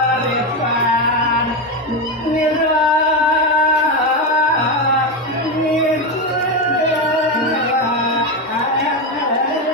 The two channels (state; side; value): normal; both; correlation 0.12